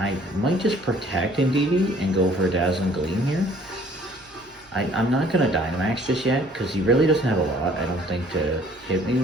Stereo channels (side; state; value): both; normal; correlation 0.56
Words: might just protect Indeedee and go for a Dazzling Gleam here. I'm not going to Dynamax just yet, because he really doesn't have a lot, I don't think, to hit me